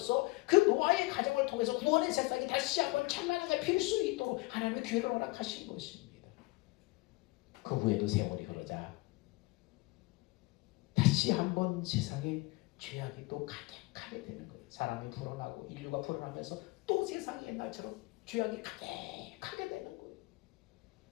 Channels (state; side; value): quieter; right; 22.9 dB